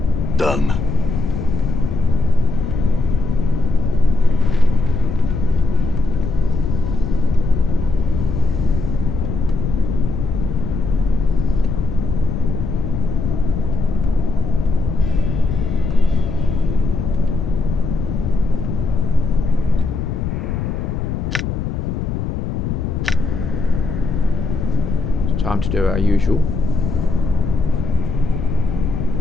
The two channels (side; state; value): left; noise; rumble, 3 dB below the sound